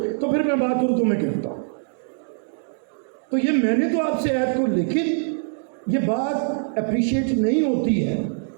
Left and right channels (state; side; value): silent; left; 63 dB below the other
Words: تو پھر میں بات اردو میں کرتا ہوں. تو یہ میں نے تو آپ سے عہد کو، لیکن یہ بات اپریشیٹ نہیں ہوتی ہے.